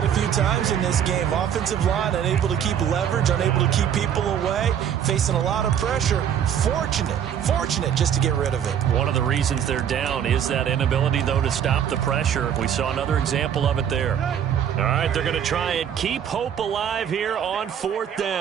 a few times in this game. Offensive line unable to keep leverage, unable to keep people away, facing a lot of pressure. Fortunate just to get rid of it. One of the reasons they're down is that inability, though, to stop the pressure. We saw another example of it there. All right, they're going to try and keep hope alive here on 4th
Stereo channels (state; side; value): quieter; left; 9.0 dB